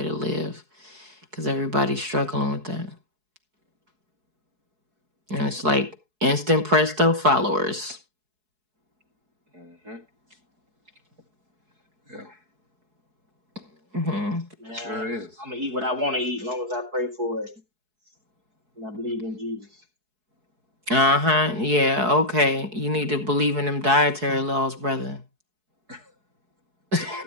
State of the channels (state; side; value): late; left; 4.7 ms